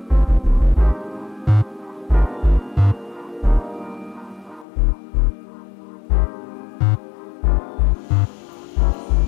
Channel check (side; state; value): right; drops out; at 4.7 s